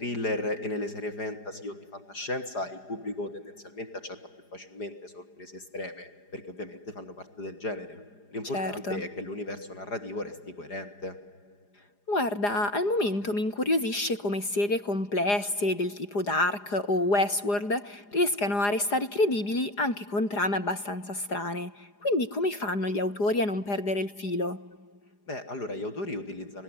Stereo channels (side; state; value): right; late; 4.9 ms